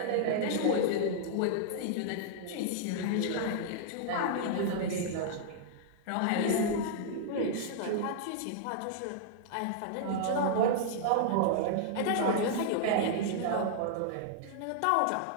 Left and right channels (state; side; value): different; both; correlation -0.01